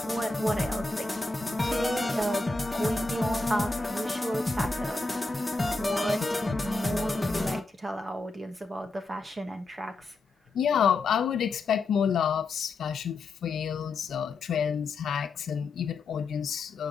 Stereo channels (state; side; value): quieter; right; 3.5 dB